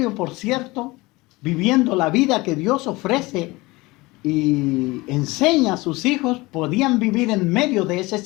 por cierto, viviendo la vida que Dios ofrece y enseña a sus hijos, podían vivir en medio de ese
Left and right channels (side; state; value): right; quieter; 22.0 dB